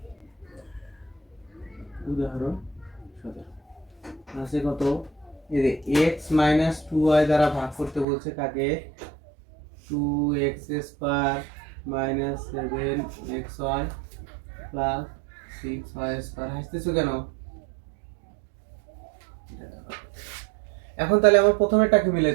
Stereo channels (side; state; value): left; drops out; at 8.1 s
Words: উদাহরণ 17 আছে কত, এই যে x - 2y দ্বারা ভাগ করতে বলছে কাকে? 2x² - 7xy + 6y²। হাসতেছো কেন? এখন তাহলে আমার প্রথমেরটাকে